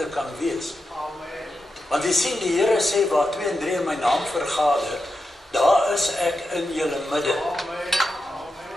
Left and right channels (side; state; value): both; normal; correlation 0.89